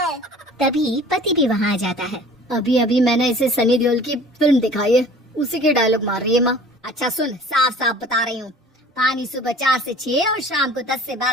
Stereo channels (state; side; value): normal; both; correlation 0.46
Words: तभी पति भी वहाँ आ जाता है। अभी अभी मैंने इसे सनी देओल की फिल्म दिखाई है, उसी के डायलॉग मार रही है माँ। अच्छा सुन, साफ साफ बता रही हूँ, पानी सुबह 4 से 6 और शाम को 10 से